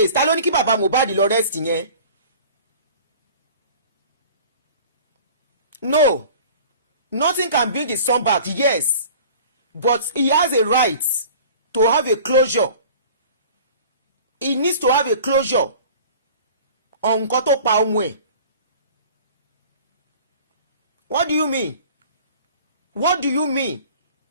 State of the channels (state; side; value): inverted; both; correlation -0.44